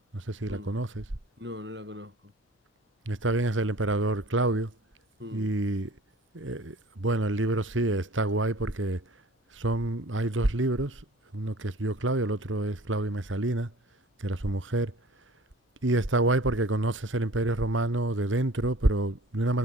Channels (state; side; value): normal; both; correlation 0.47